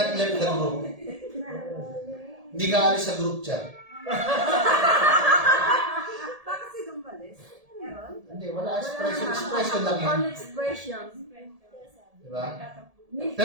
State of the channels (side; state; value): left; late; 1.7 ms